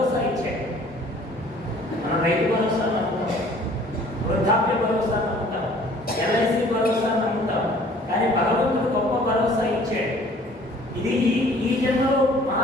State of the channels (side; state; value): both; normal; correlation 0.53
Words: ఇచ్చాడు. మనం రైతు భరోసా నమ్ముతాం, వృద్ధాప్య భరోసా నమ్ముతాం, ఎల్ఐసి భరోసా నమ్ముతాం, కానీ భగవంతుడు గొప్ప భరోసా ఇచ్చాడు. ఇది ఈ జన్మలో